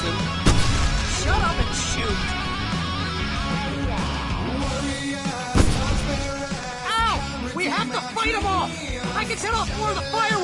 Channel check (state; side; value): identical; both; correlation 1.00